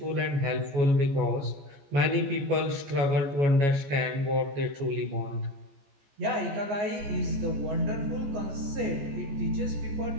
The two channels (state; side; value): late; left; 14 ms